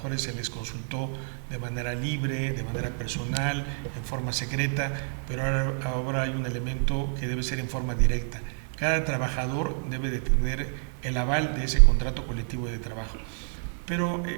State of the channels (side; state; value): left; silent; 59 dB below the other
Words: se les consultó de manera libre, de manera personal, en forma secreta, pero ahora hay un elemento que debe ser en forma directa. Cada trabajador debe de tener el aval de ese contrato colectivo de trabajo. Pero